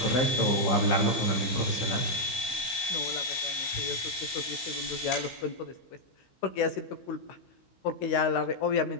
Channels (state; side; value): late; right; 16 ms